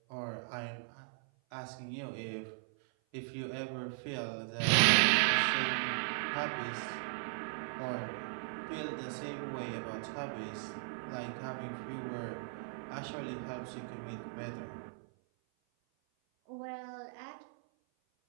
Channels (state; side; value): silent; left; 53 dB below the other